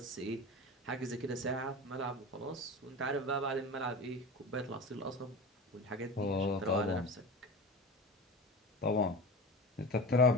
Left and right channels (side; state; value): both; normal; correlation 0.30